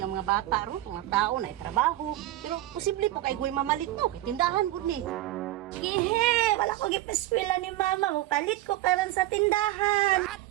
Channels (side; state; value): left; quieter; 15.4 dB